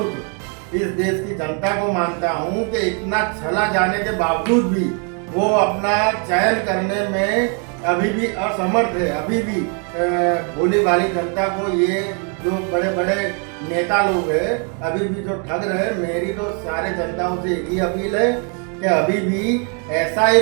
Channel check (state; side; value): quieter; left; 39.3 dB